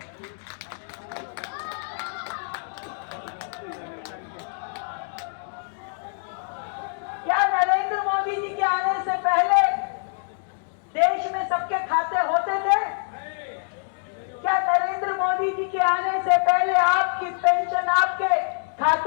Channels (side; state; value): right; silent; 61 dB below the other